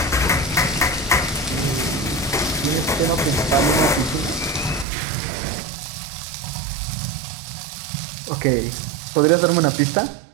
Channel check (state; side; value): drops out; left; at 4.9 s